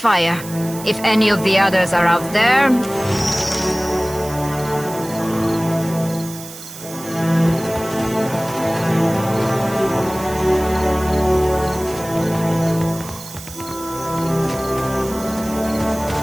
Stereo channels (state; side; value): noise; right; hiss, 14 dB below the sound